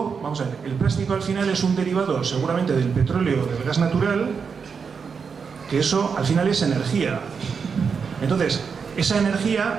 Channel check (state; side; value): quieter; left; 5.9 dB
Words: vamos a ver, el plástico al final es un derivado seguramente del petróleo, del gas natural, que eso al final es energía. Entonces, esa